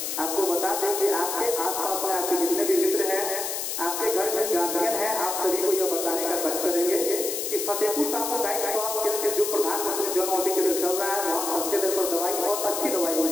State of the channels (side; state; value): left; noise; hiss, 3 dB below the sound